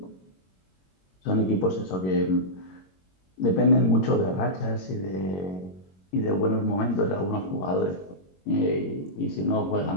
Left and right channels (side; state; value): right; late; 21 ms